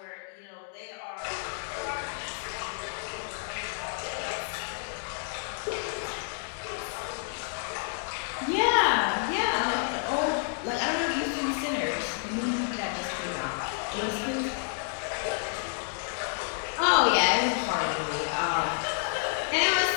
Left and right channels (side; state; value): right; silent; 58 dB below the other